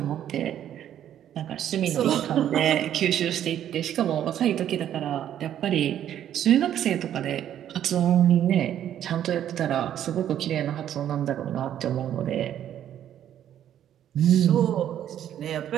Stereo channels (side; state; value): left; quieter; 10.7 dB